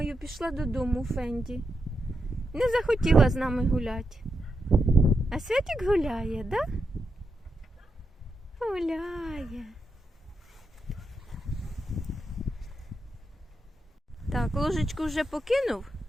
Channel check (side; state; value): both; normal; correlation 0.85